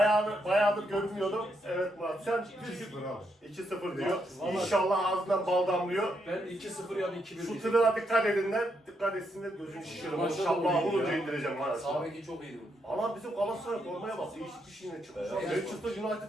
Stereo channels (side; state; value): both; normal; correlation 0.79